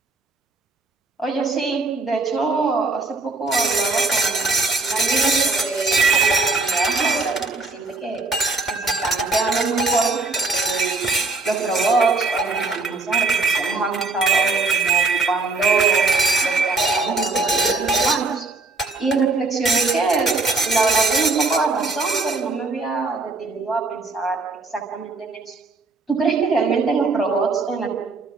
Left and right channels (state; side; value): quieter; left; 3.7 dB